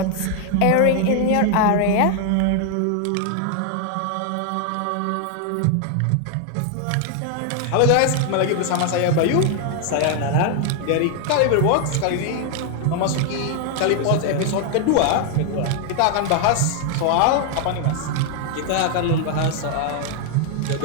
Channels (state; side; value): different; both; correlation 0.00